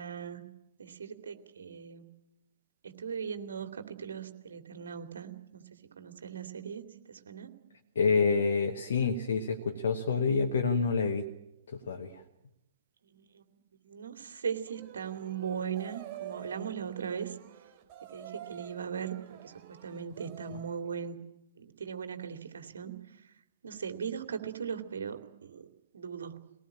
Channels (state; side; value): inverted; both; correlation -0.63